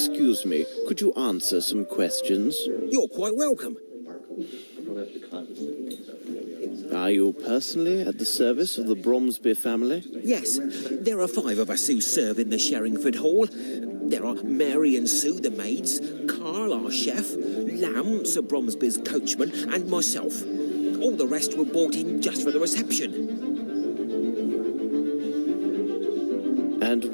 me, could you answer some questions? You're quite welcome. Are you personally at the service of the Bromsby family? Yes, there are 5 of us who serve in the Sherringford Hall. There are Mary and Sue, the maids, Carl, our chef, Lamb, Sir Bromsby's coachman, and myself. All the rest were brought in just for the reception. And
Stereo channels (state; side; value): inverted; both; correlation -1.00